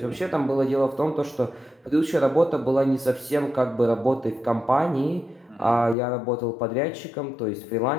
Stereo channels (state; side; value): drops out; right; at 6.0 s